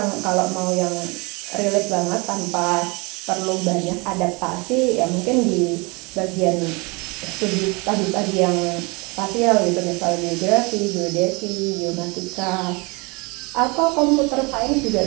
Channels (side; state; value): left; quieter; 28.1 dB